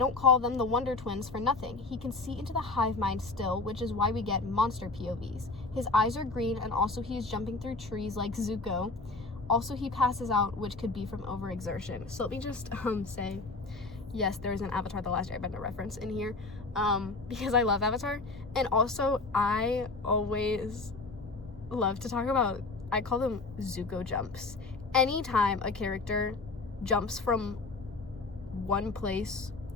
call them the Wonder Twins for nothing. He can see into the hive mind still, which is why we get monster POVs. His eyes are green, and also he's jumping through trees like Zuko. Also, he passes out, which could be from overexertion. So let me just say, yes, there is an Avatar The Last Airbender reference in here, because I love Avatar. And also, I always love to talk about, I call them Zuko jumps. Anytime a character jumps from one place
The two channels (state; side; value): quieter; right; 3.6 dB